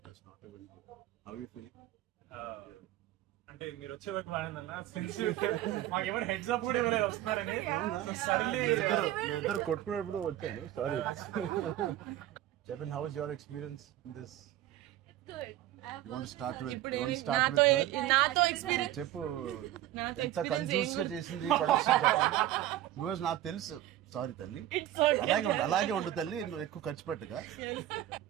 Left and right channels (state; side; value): quieter; left; 13.4 dB